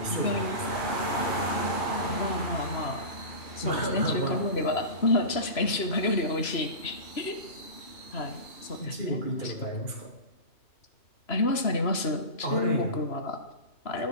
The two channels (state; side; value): late; right; 3.0 ms